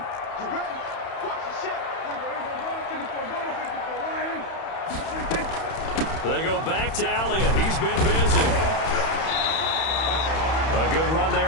They go back to Elliott. He's been busy. A good run there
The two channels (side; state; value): right; late; 31 ms